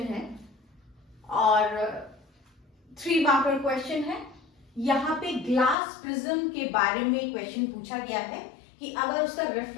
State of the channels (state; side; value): drops out; right; at 5.8 s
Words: है और 3 मार्कर क्वेश्चन है। यहाँ पे ग्लास प्रिज्म के बारे में क्वेश्चन पूछा गया है कि अगर उसका